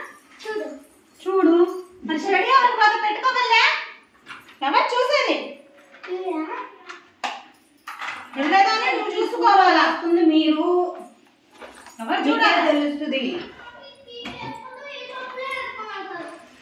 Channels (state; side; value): identical; both; correlation 1.00